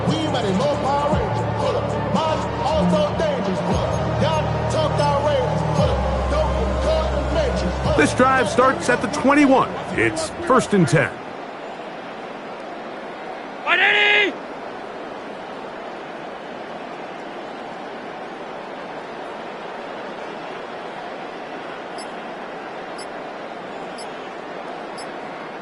We ain't at a low power range. Mine also dangerous. Y'all talk outrageous. Don't cut the matrix. This drive starts at the 21. It's 1st and 10.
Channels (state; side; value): identical; both; correlation 1.00